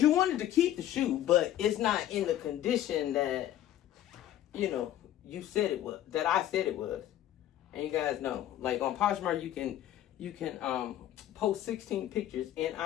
you wanted to keep the shoe, but it's not in the condition that, you know, you said it was, that I said it was. And you guys know, like on Poshmark, you can post 16 pictures, and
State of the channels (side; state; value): right; quieter; 12.4 dB